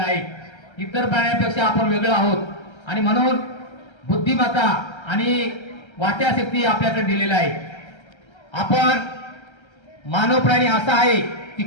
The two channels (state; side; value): late; right; 1.3 ms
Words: आहे. इतर प्राण्यांपेक्षा आपण वेगळं आहोत आणि म्हणून बुद्धिमत्ता आणि वाचाशक्ती आपल्याकडे दिलेला आहे. आपण मानव प्राणी असा आहे की